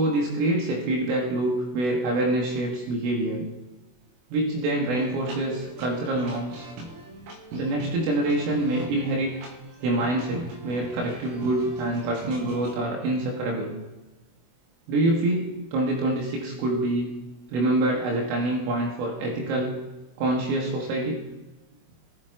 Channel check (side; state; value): left; late; 24 ms